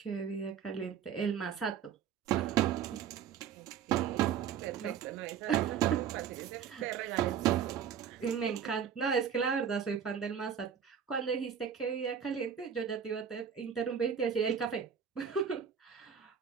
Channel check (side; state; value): left; quieter; 7.9 dB